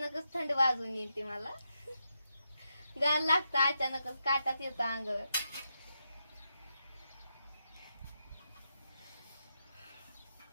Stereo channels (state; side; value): inverted; both; correlation -0.85